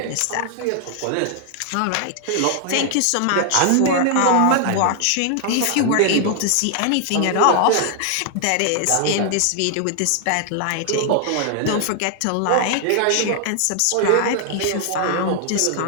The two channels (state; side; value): different; both; correlation 0.00